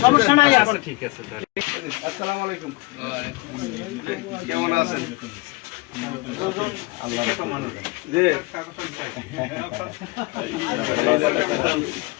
সমস্যা নাই এখন ঠিক আছে আসসালামু আলাইকুম কেমন আছেন আল্লাহ জি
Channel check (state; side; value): quieter; right; 24.2 dB